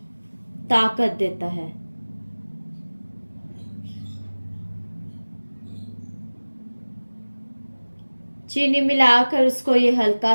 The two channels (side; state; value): both; inverted; correlation -1.00